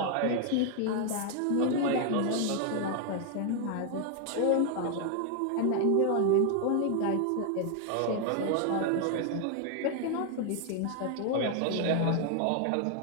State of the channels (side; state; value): both; different; correlation 0.00